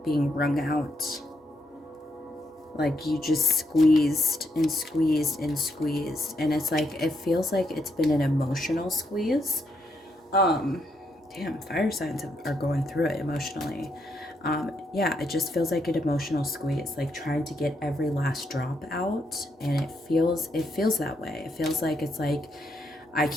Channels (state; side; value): normal; both; correlation 0.77